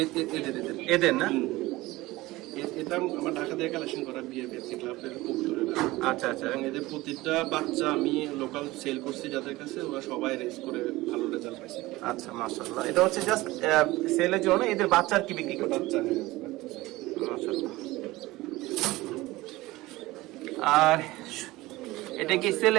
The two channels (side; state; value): left; quieter; 19.2 dB